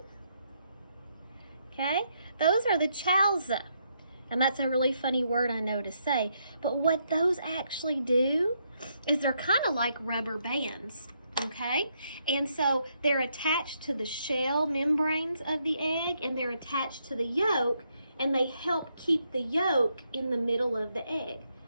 Okay? Those are the chalza. And that's a really funny word I know to say. But what those actually do is they're kind of like rubber bands. Okay? And so they're attached to the shell membranes of the egg, and they're attached to the yolk, and they help keep the yolk in the middle of the egg.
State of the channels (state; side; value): inverted; both; correlation -0.77